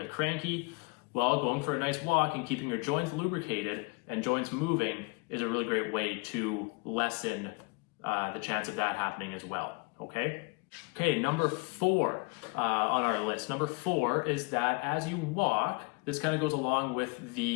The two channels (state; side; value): quieter; right; 31.7 dB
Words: cranky. Well, going for a nice walk and keeping your joints lubricated and joints moving is a really great way to lessen the chance of that happening as well, okay? Okay, number 4 on our list. Number 4 is that as you walk, this kind of goes along with